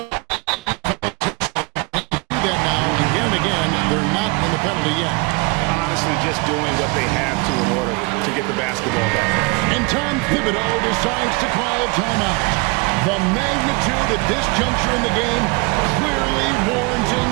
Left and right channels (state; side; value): quieter; left; 28.6 dB